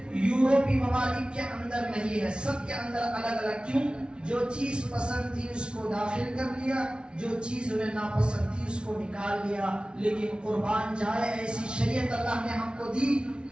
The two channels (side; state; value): left; late; 0.057 ms